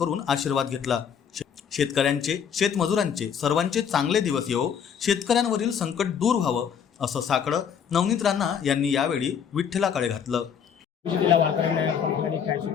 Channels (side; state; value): right; quieter; 7.7 dB